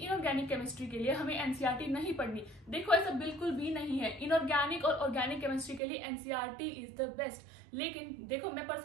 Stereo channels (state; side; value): drops out; left; at 5.8 s